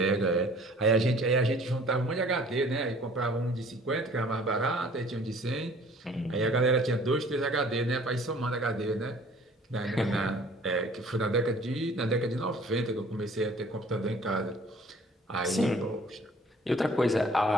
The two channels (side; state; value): both; normal; correlation 0.53